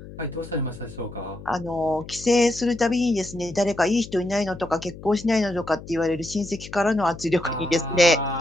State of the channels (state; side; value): noise; left; hum, 15 dB below the sound